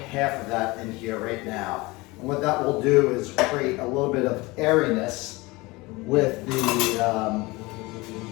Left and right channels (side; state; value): right; quieter; 22.9 dB